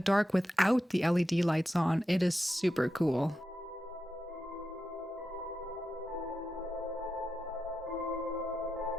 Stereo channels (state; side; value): normal; both; correlation 0.89